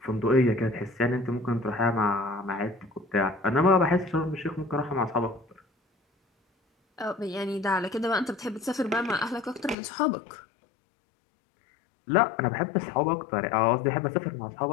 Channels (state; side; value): drops out; right; at 9.8 s